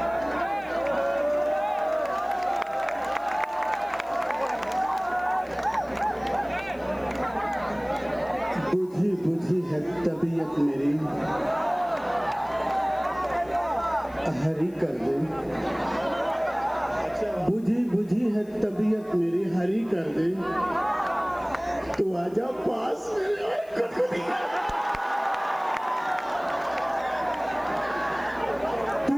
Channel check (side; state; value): left; noise; hiss, 29 dB below the sound